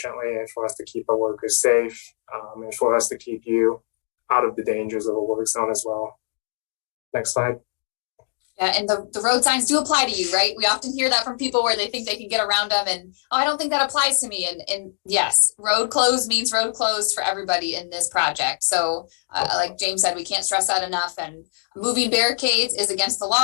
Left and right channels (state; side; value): silent; right; digital silence